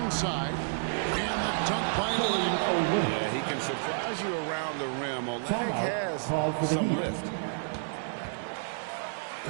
And the dunk by Olynyk. Yeah, he can surprise you around the rim. Olynyk has some lift.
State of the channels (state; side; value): silent; left; digital silence